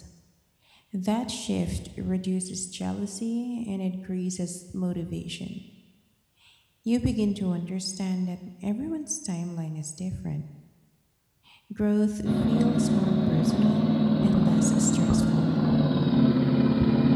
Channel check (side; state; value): both; identical; correlation 1.00